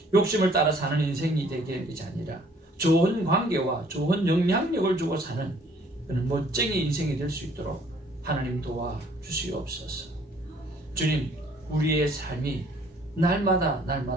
욕심을 따라 사는 인생이 되게 하는 것이 아니라 좋은 관계와 좋은 영향력을 주고 사는 그런 멋쟁이 인생이 될 수 있도록 하나님 도와주시옵소서. 주님, 우리의 삶이 날마다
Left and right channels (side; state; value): both; normal; correlation 0.59